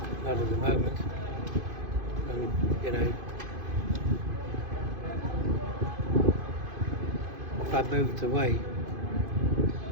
Not at the moment. And, if I moved away,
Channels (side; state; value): left; late; 2.5 ms